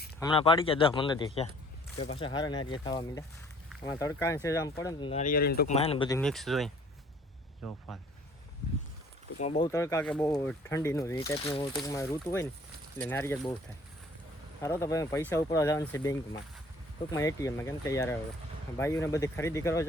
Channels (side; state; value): both; normal; correlation 0.56